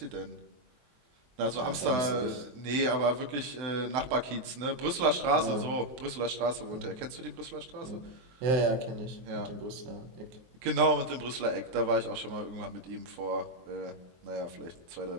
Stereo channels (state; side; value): late; left; 24 ms